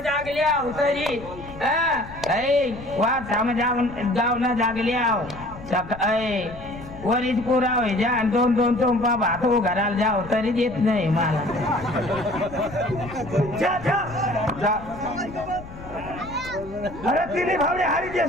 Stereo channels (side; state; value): left; noise; rumble, 15 dB below the sound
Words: जागलिया तरी वा समजा गाव ना जागलिया वरीच पुरा होय जा 2 चोंपा भात घराला जाव तरी देत नाही मला जा अरे तिने भावने हारी